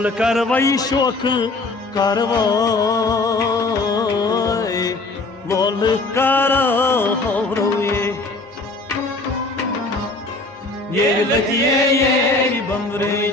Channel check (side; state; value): right; quieter; 3.2 dB